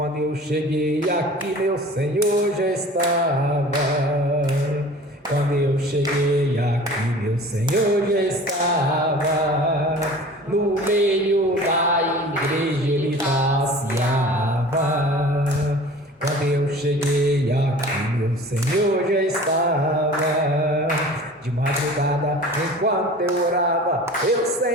eu cheguei aqui, meu Senhor já estava. Quando eu cheguei aqui, meu Senhor já estava. No meio da igreja ele passeava. Quando eu cheguei aqui, meu Senhor já estava. De madrugada, enquanto eu orava, eu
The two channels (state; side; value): normal; both; correlation 0.42